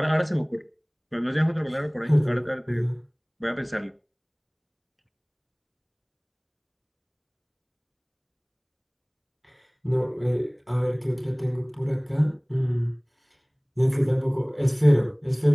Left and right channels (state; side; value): identical; both; correlation 1.00